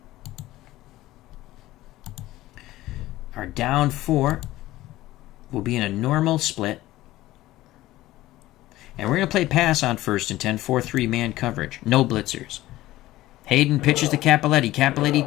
Our down 4 will be in a normal split. And we're going to play pass on 1st and 10, 4-3 man coverage. No blitzers. Hayden pitches to Cappelletti. Cappelletti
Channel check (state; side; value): quieter; right; 16.4 dB